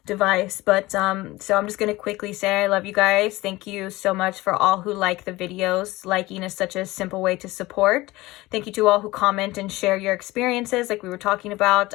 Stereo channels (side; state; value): right; quieter; 19.6 dB